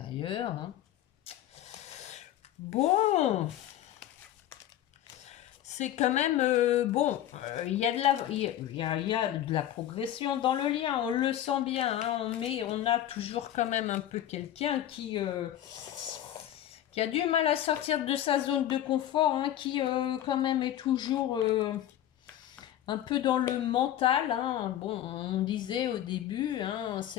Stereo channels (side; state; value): right; quieter; 12.1 dB